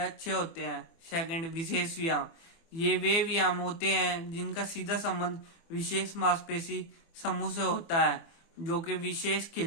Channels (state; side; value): late; right; 24 ms